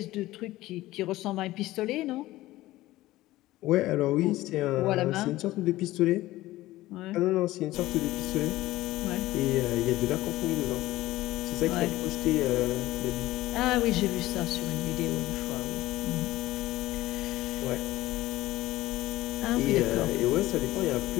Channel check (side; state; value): right; quieter; 17.0 dB